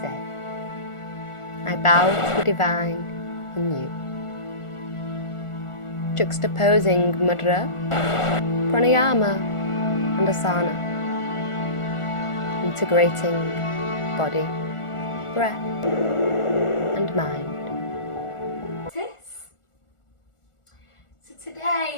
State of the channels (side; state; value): right; late; 1.4 ms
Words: I bow to the divine in you. Juxtaposing mudra, pranayama and asana. Integrating body, breath and mind. So